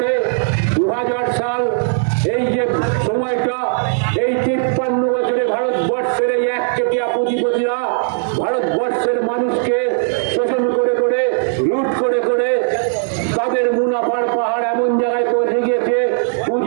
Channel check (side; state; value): left; silent; digital silence